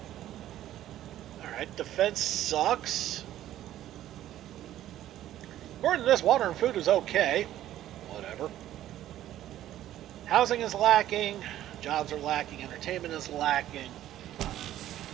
Alright, defense sucks. According to this, water and food is okay. Whatever. Housing is lacking. Jobs are lacking. Entertainment is lacking.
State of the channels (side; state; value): left; quieter; 12.9 dB